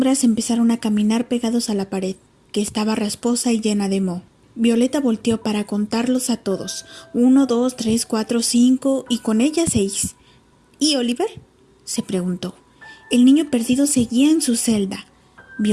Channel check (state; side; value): identical; both; correlation 1.00